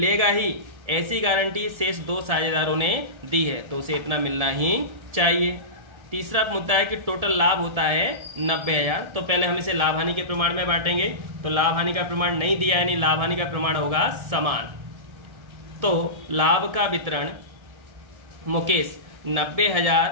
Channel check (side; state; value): left; late; 1.7 ms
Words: ही, ऐसी गारंटी शेष 2 साझेदारों ने दी है, तो उसे इतना मिलना ही चाहिए। तीसरा मुद्दा है कि टोटल लाभ होता है 90,000। तो पहले हम इसे लाभ हानि के प्रमाण में बांटेंगे। तो लाभ हानि का प्रमाण नहीं दिया, यानी लाभ हानि का प्रमाण होगा समान। तो लाभ का वितरण मुकेश